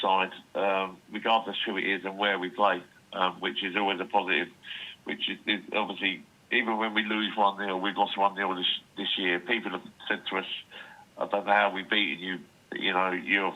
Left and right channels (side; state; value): both; identical; correlation 1.00